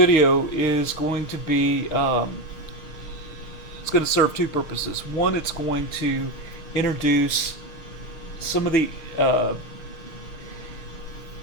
is going to be, it's going to serve two purposes. One, it's going to introduce some of the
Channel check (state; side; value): late; right; 6.5 ms